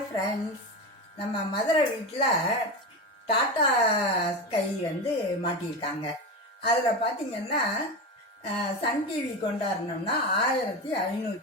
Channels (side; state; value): both; normal; correlation 0.21